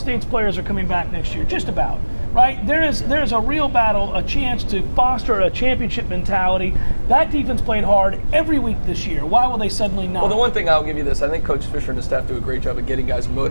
players are coming back next year, just about. Right? There's a real battle, a chance to foster a championship mentality. That defense played hard every week this year. Why will they suddenly not? Well, the one thing I'll give you this, I think Coach Fisher and his staff do a great job of getting guys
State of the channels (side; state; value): both; inverted; correlation -1.00